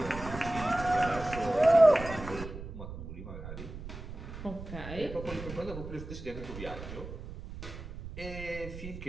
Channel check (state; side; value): noise; right; rumble, 10 dB below the sound